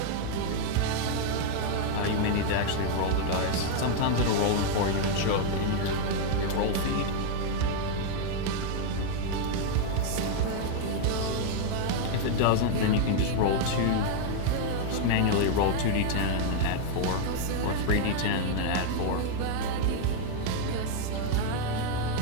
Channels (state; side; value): different; both; correlation 0.00